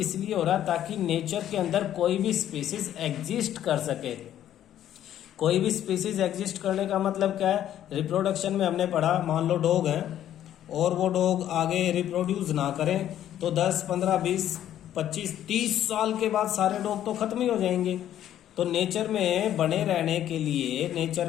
हो रहा है ताकि नेचर के अंदर कोई भी स्पीसीज एग्जिस्ट कर सके। कोई भी स्पीसीज एग्जिस्ट करने का मतलब क्या है? रिप्रोडक्शन में हमने पढ़ा, मान लो डॉग है और वो डॉग आगे रिप्रोड्यूस ना करें तो 10, 15, 20, 25, 30 साल के बाद सारे डॉग तो खत्म ही हो जाएंगे। तो नेचर में बने रहने के लिए,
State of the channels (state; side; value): quieter; right; 11.4 dB